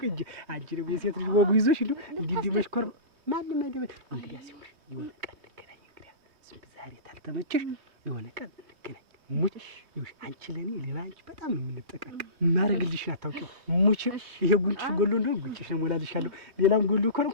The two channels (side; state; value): left; late; 3.2 ms